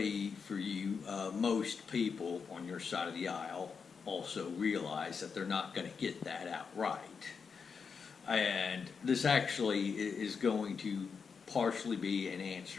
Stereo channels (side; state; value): right; quieter; 5.8 dB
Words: for you, most people on your side of the aisle also realize that they're not going to get that outright. And this actually is going to partially be an